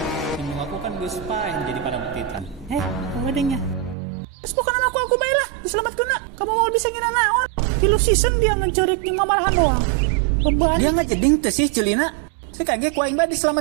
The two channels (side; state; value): left; drops out; at 4.0 s